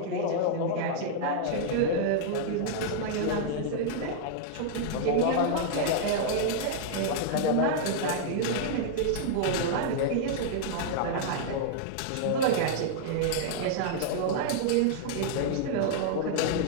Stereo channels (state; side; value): different; both; correlation -0.01